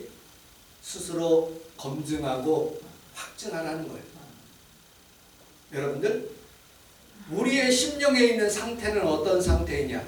스스로 검증하고 확증하라는 거예요. 여러분들, 우리의 심령에 있는 상태는 어떤 상태이냐?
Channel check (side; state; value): both; identical; correlation 1.00